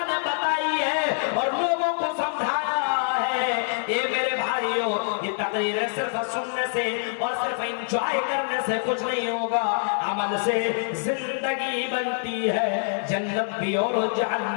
نے بتائی ہے اور لوگوں کو سمجھایا ہے۔ یہ میرے بھائیوں یہ تقریر صرف سننے سے اور صرف انجوائے کرنے سے کچھ نہیں ہوگا، عمل سے زندگی بنتی ہے، جنت بھی اور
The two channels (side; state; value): right; silent; 61 dB below the other